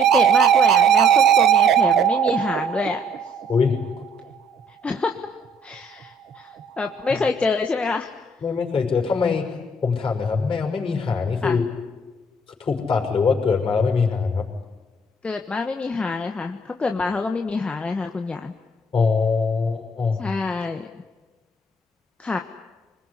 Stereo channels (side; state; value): both; normal; correlation 0.62